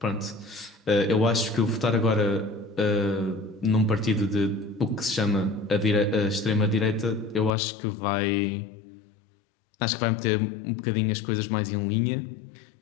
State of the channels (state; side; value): drops out; right; at 7.5 s